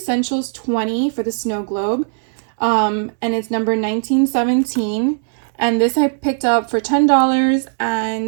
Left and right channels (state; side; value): silent; left; digital silence